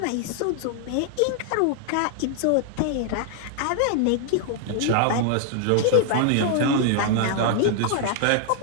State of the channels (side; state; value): both; different; correlation 0.00